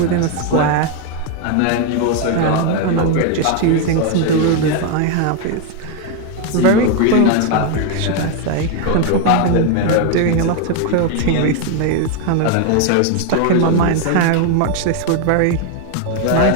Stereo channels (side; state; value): both; different; correlation 0.01